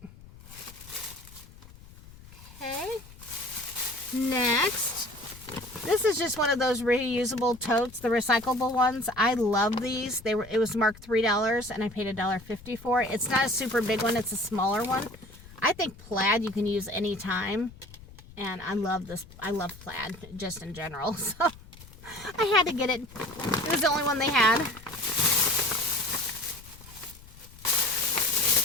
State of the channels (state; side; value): noise; left; rumble, 20 dB below the sound